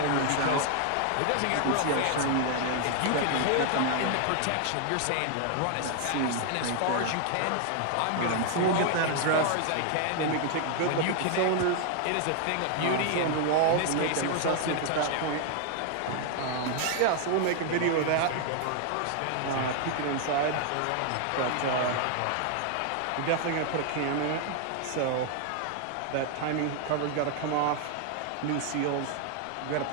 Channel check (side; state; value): both; different; correlation 0.00